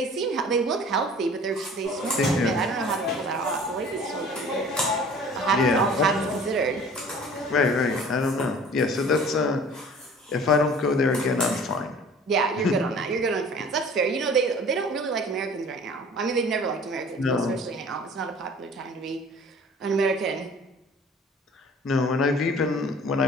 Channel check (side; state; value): both; normal; correlation 0.47